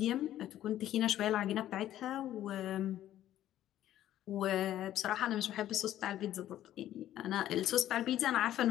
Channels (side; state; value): right; quieter; 12.6 dB